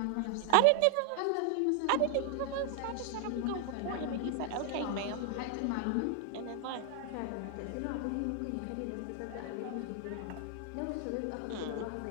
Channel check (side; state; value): both; different; correlation 0.00